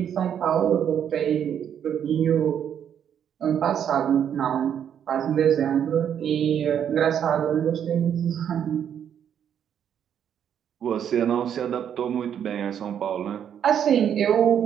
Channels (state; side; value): quieter; left; 8.9 dB